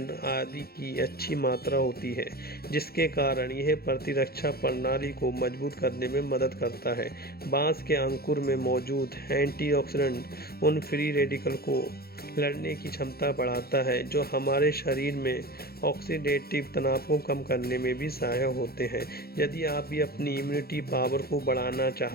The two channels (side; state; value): right; late; 0.45 ms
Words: आदि की अच्छी मात्रा होती है, जिसके कारण यह प्रतिरक्षा प्रणाली को मजबूत करने में मदद करता है। बांस के अंकुर में मौजूद एंटीऑक्सीडेंट उन फ्री रेडिकल को लड़ने की क्षमता बढ़ाता है जो हमारे शरीर में ऑक्सीडेटिव तनाव को कम करने में भी सहायक होते हैं। यदि आप भी अपनी इम्यूनिटी पावर को बढ़ाना